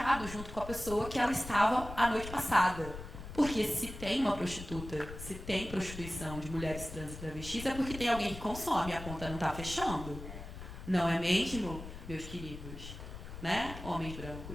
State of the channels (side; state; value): left; noise; rumble, 11 dB below the sound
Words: junto com a pessoa que ela estava a noite passada. Porque se tem uma prostituta, se tem prostituição de mulheres trans e travestis, é porque tem alguém que consome, a conta não está fechando. Não é mesmo, meus queridos? Né? Homens